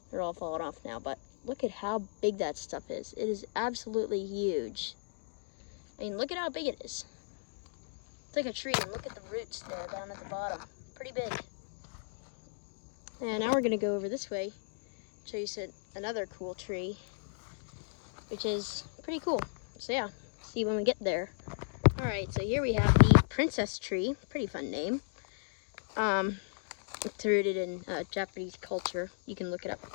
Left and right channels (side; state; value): right; silent; digital silence